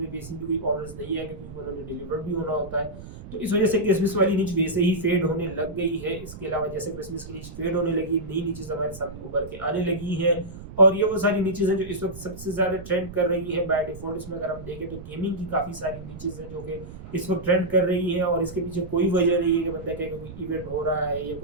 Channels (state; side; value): noise; right; rumble, 14 dB below the sound